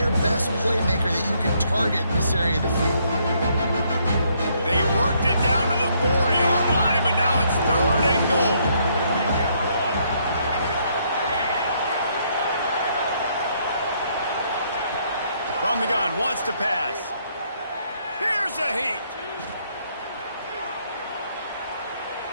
best playmaker that you can target in this area of the field? They worked it down to the 4-yard line, but now it's 3rd and goal. From the gun, wants to pass. Here's a heat.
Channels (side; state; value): both; inverted; correlation -0.70